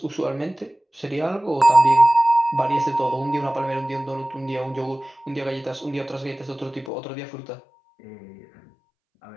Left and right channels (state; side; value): drops out; right; at 6.9 s